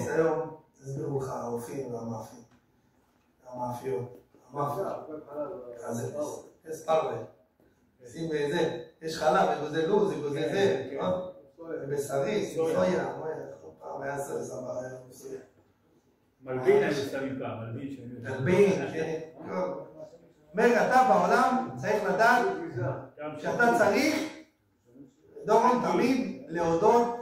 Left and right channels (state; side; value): identical; both; correlation 1.00